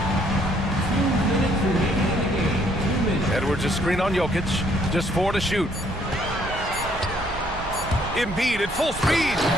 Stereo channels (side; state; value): right; noise; rumble, 11 dB below the sound